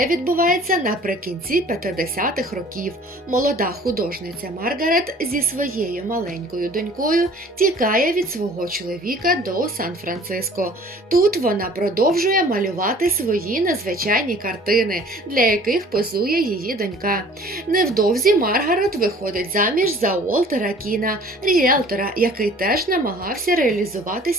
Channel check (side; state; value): both; normal; correlation 0.50